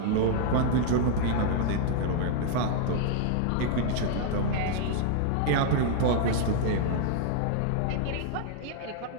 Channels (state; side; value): different; both; correlation -0.01